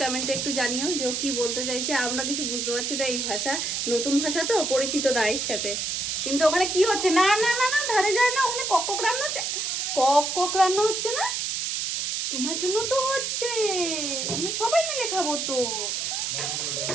কমেন্টে একটু জানিও যে ও কি বলতে চাইছে। আমরা কিছু বুঝতে পারছি না, এই ভাষা নতুন ভাষা তো, পরিচিত না এর সাথে। কিন্তু ওখানে কি হচ্ছে? না না না না, ধারে যায় না, ওখানে কক রান্না হচ্ছে। কক রান্না হচ্ছে না, তোমার জন্য তো হচ্ছে, আমরা সবাই মিলে খাবো তো।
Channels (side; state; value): right; noise; hiss, 1 dB below the sound